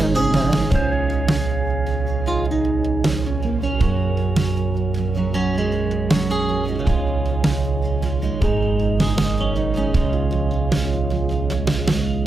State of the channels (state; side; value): noise; right; hum, 5 dB below the sound